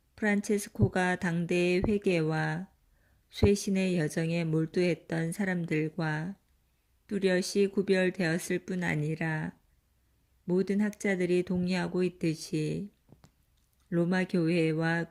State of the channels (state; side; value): identical; both; correlation 1.00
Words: 프란체스코가 당대의 회개와 쇄신의 여정에 몰두했던 사람들과 뚜렷이 구별되었을 뿐 아니라 모든 학자들이 동의하고 있듯이 로마 교회와